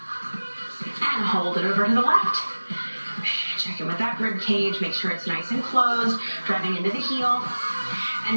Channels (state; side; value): inverted; both; correlation -1.00